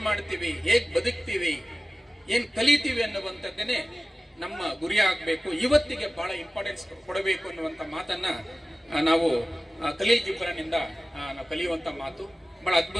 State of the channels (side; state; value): both; normal; correlation 0.96